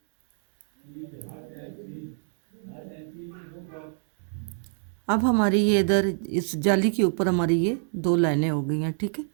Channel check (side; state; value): left; silent; 60 dB below the other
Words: अब हमारी ये इधर इस जाली के ऊपर हमारी ये 2 लाइनें हो गई हैं, ठीक है,